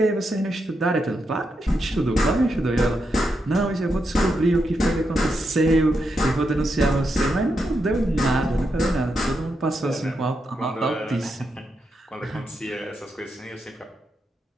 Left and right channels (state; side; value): normal; both; correlation 0.84